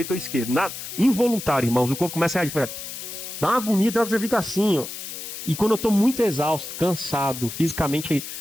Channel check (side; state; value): left; noise; hiss, 9 dB below the sound